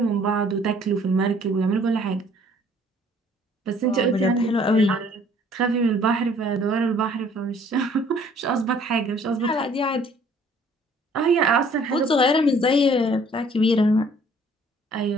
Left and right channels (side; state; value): both; normal; correlation 0.58